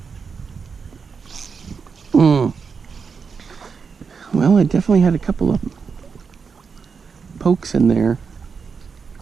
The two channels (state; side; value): quieter; left; 5.6 dB